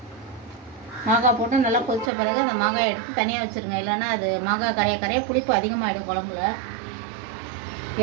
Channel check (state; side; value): drops out; left; at 2.1 s